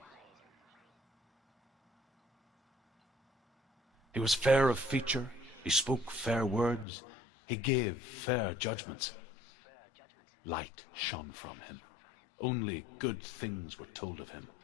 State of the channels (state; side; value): drops out; right; at 6.9 s